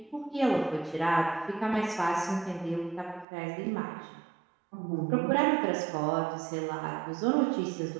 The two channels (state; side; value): drops out; left; at 3.2 s